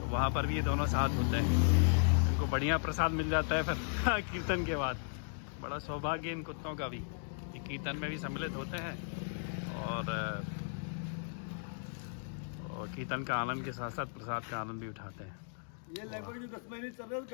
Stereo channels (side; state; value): right; silent; digital silence